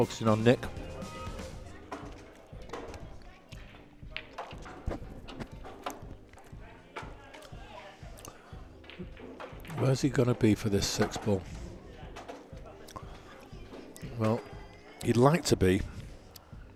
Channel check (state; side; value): identical; both; correlation 1.00